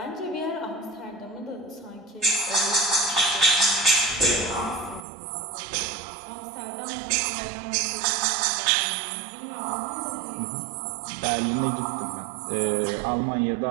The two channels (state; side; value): drops out; left; at 5.1 s